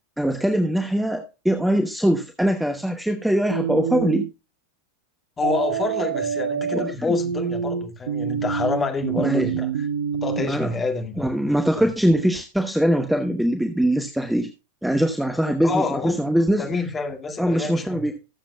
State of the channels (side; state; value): both; normal; correlation 0.72